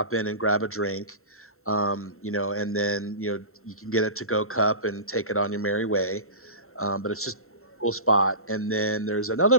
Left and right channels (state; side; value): late; right; 0.62 ms